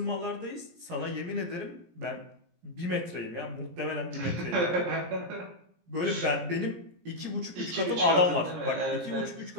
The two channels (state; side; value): late; left; 17 ms